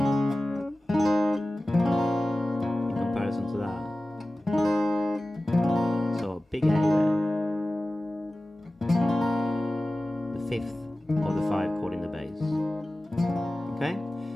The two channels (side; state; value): both; normal; correlation 0.96